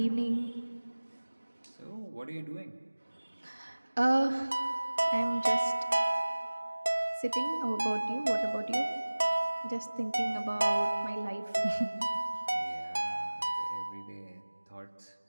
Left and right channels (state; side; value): inverted; both; correlation -1.00